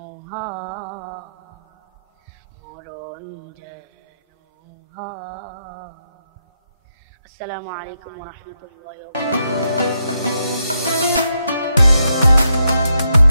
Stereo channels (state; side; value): inverted; both; correlation -0.82